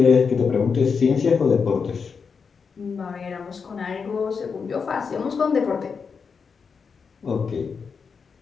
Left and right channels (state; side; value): quieter; right; 5.7 dB